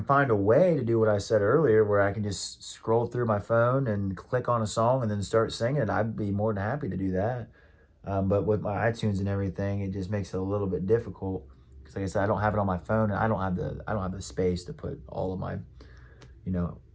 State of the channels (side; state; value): both; identical; correlation 1.00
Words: find a way to do what I said earlier, where I can just scroll through my phone and click on a song and then start singing it, I'd be more than happy to do that. But with my iTunes and everything, it just makes it a little bit difficult, because like I said, I don't have it on my phone, and I don't have the space to put all of my, you know,